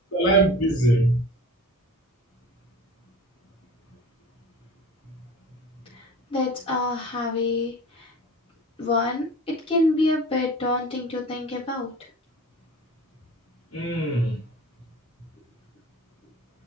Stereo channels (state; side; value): normal; both; correlation 0.39